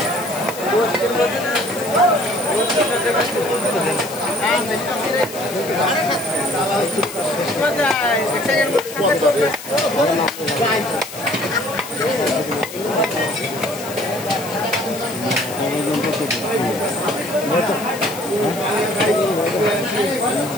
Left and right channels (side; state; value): left; noise; hiss, 12 dB below the sound